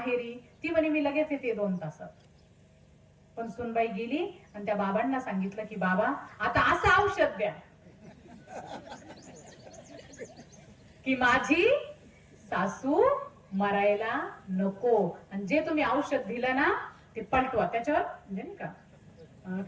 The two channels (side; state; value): both; identical; correlation 1.00